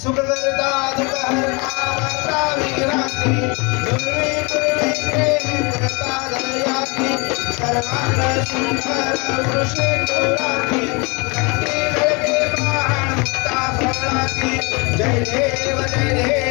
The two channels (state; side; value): quieter; right; 29.1 dB